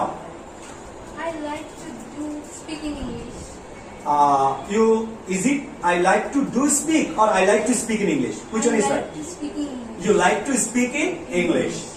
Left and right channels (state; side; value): identical; both; correlation 1.00